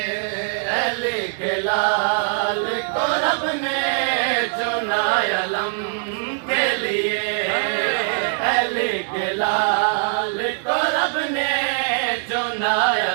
अली के लाल को रब ने चुना अलम के लिए अली के लाल को रब ने चुना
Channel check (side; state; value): left; silent; 64 dB below the other